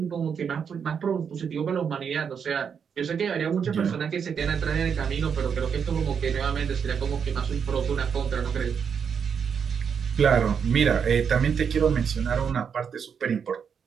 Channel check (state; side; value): quieter; left; 7.0 dB